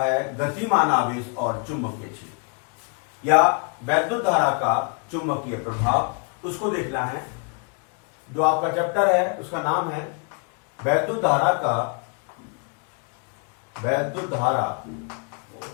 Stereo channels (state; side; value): quieter; right; 36.8 dB